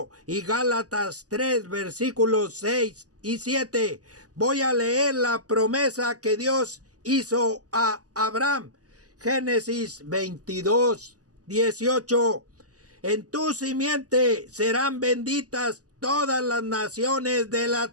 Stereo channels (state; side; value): late; left; 0.67 ms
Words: y Gálatas 3, versículos 6 y 7. Voy a leer la promesa que Dios hizo a Abraham. Génesis 22, 18. En tu simiente serán benditas todas las naciones de